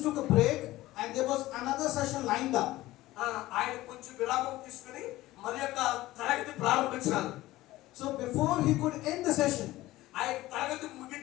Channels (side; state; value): right; quieter; 17.1 dB